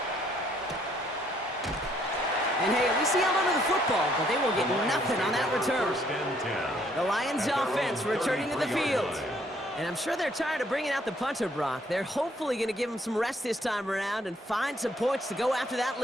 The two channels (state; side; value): normal; both; correlation 0.66